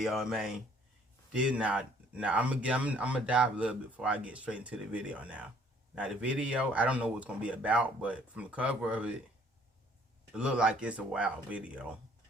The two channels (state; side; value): normal; both; correlation 0.60